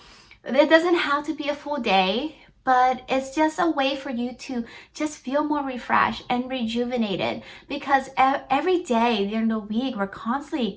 it doesn't have to be a full day, but it's just a way for you to just feel more refreshed and rejuvenated, because every day during the week, we're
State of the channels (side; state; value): both; identical; correlation 1.00